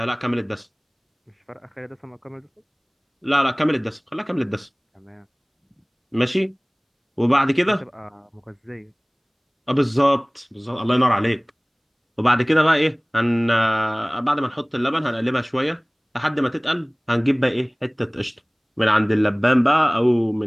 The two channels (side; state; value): both; identical; correlation 1.00